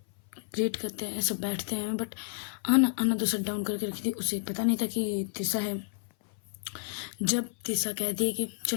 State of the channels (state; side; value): silent; right; 57 dB below the other